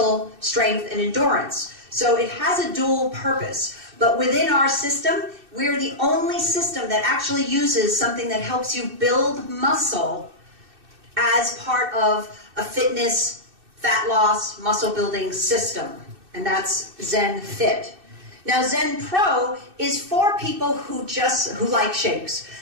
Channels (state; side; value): late; left; 2.6 ms